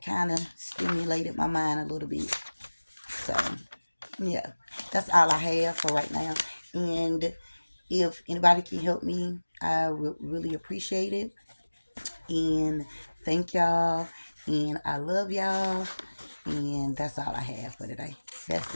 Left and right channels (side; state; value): both; inverted; correlation -1.00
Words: kind of stimulated my mind a little bit. So yeah, that's all I have for right now. And if anybody can help me, I would really appreciate it. And thank y'all. And I love y'all. And that's all I have for today. That's